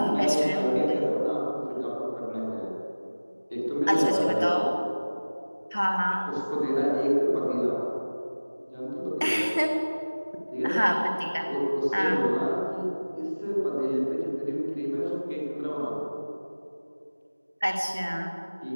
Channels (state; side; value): inverted; both; correlation -1.00